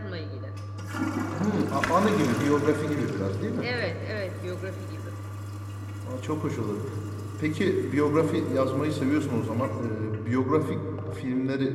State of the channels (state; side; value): identical; both; correlation 1.00